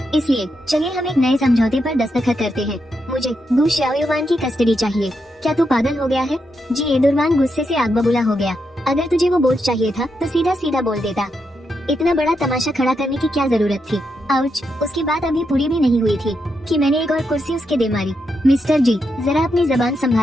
इसलिए चलिए हम एक नए समझौते पर दस्तखत करते हैं। मुझे गु शाओयुआन की कस्टडी चाहिए। क्या तू पागल हो गया है? जी एडुरवान गुस्से से आग बबूला हो गया। अगर तुझे वो बोझ चाहिए था तो सीधा सीधा बोल देता। इतना बड़ा तमाशा खड़ा करने की क्या जरूरत थी? आउच, उसकी बात अभी पूरी भी नहीं हुई थी कि मैंने एक और कुर्सी उसके दे मारी। मिस्टर जी, जरा अपनी जबान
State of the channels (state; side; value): normal; both; correlation 0.83